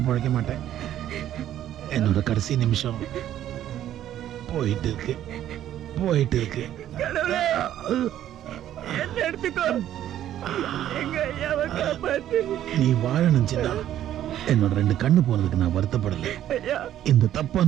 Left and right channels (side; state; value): left; quieter; 11.7 dB